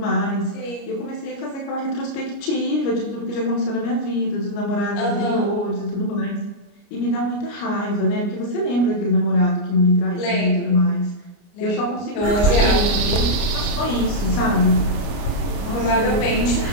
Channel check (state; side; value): late; right; 29 ms